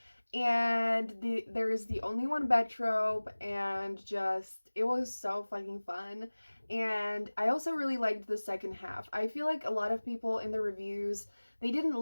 and there is the only one bed trope, and just it was so fucking fun. And I also really liked the second half. I feel like a lot of people in the reviews, they didn't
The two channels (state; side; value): inverted; both; correlation -1.00